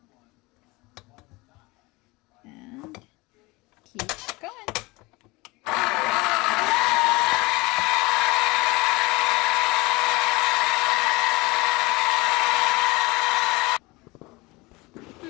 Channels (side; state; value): right; quieter; 23.4 dB